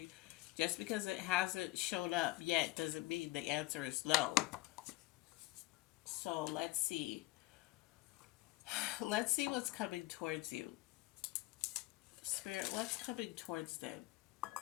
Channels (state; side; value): quieter; right; 19.6 dB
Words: just because it hasn't shown up yet doesn't mean the answer is no. So let's see. Let's see what's coming towards you. Spirit, what's coming towards them?